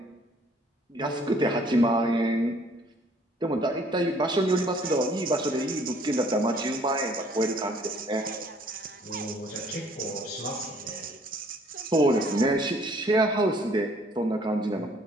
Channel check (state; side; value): normal; both; correlation 0.59